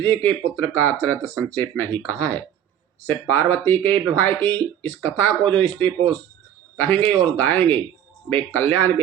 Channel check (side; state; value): left; quieter; 9.9 dB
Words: के पुत्र का चरित्र संक्षेप में ही कहा है। शिव पार्वती के विवाह की इस कथा को जो स्त्री पुरुष कहेंगे और गाएंगे, वे कल्याण